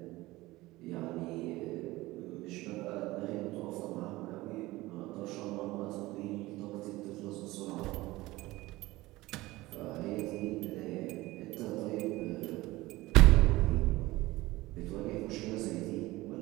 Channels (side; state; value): left; quieter; 19.2 dB